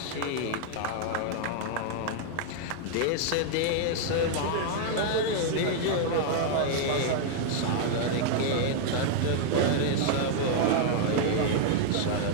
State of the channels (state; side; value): different; both; correlation -0.01